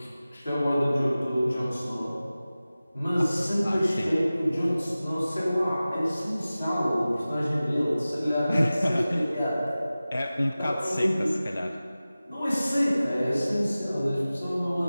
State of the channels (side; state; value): both; inverted; correlation -0.97